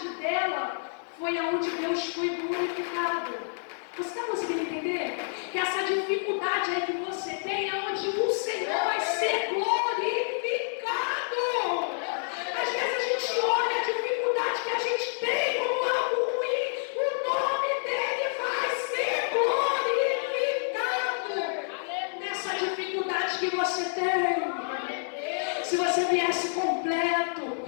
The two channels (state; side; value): silent; right; digital silence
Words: dela foi aonde Deus foi glorificado. Você está conseguindo entender? Que essa dificuldade aí que você tem é onde o Senhor vai ser glorificado. Às vezes a gente olha a dificuldade que a gente tem como algo ruim, o nome dele vai ser glorificado. Nessa dificuldade que você tem, se você viesse completo,